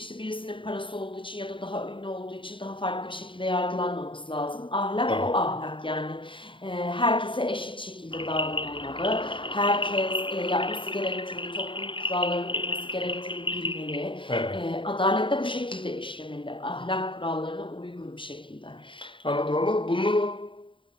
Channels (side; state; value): right; late; 0.25 ms